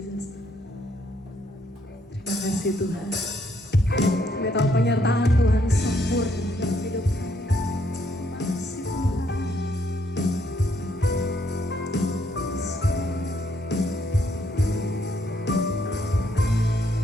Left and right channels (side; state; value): both; normal; correlation 0.72